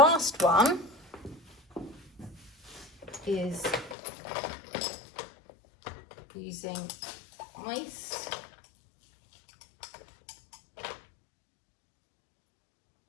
one is using ice.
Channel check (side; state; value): right; drops out; at 4.0 s